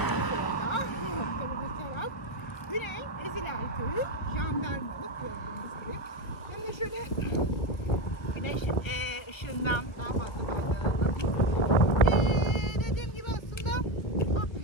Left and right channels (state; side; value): late; right; 1.6 ms